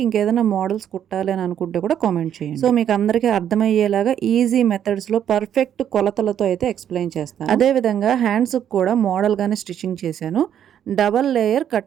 ఇంకేదైనా మోడల్స్ కుట్టాలి అని అనుకుంటే కూడా కామెంట్ చేయండి. సో మీకు అందరికీ అర్థమయ్యేలాగా ఈజీ మెథడ్స్లో పర్ఫెక్ట్ కొలతలతో అయితే ఎక్స్ప్లెయిన్ చేస్తాను. అదేవిధంగా హ్యాండ్స్కి కూడా మోడల్గానే స్టిచ్చింగ్ చేశాను, double layer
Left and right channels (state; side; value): quieter; left; 9.7 dB